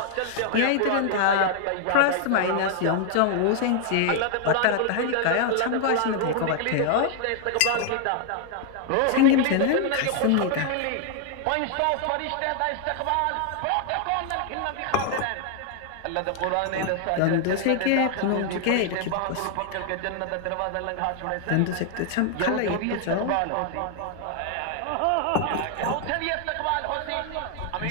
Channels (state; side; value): different; both; correlation 0.00